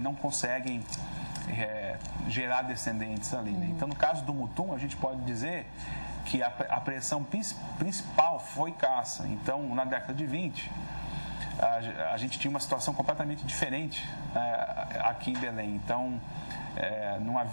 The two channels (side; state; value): both; inverted; correlation -1.00